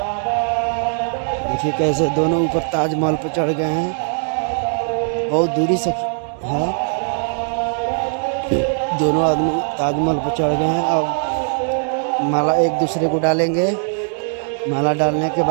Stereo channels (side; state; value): left; silent; 66 dB below the other